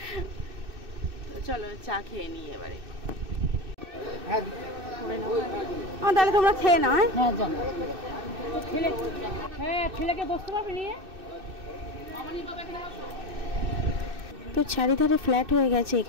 তো চলো চা খেয়ে নিই এবারে। তাহলে তোমরা খেয়ে নাও। ছেলেকে বসতে পারবে নিয়ে। তো চারিধারে ফ্ল্যাট হয়ে গেছে,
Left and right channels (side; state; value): left; late; 2.6 ms